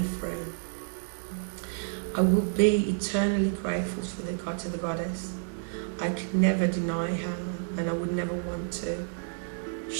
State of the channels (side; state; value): left; silent; digital silence